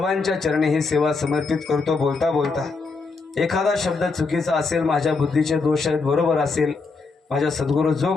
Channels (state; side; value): quieter; right; 4.2 dB